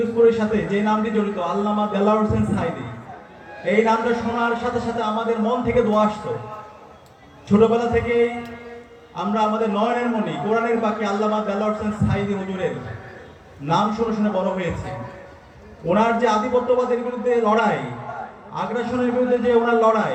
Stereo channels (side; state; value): both; identical; correlation 1.00